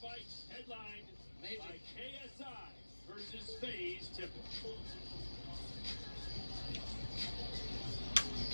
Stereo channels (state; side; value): inverted; both; correlation -1.00